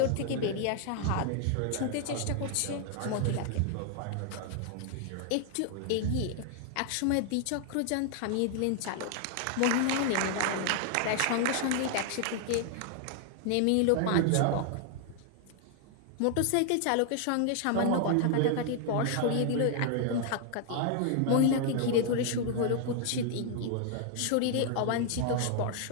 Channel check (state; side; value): different; both; correlation 0.00